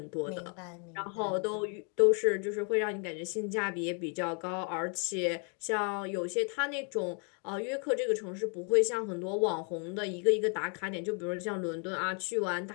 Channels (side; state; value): right; quieter; 39.5 dB